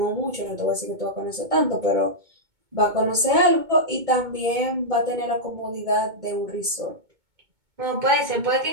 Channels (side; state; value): left; late; 2.2 ms